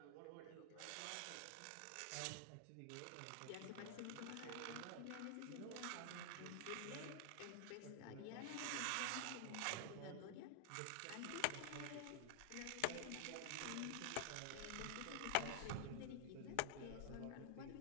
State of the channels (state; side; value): different; both; correlation 0.00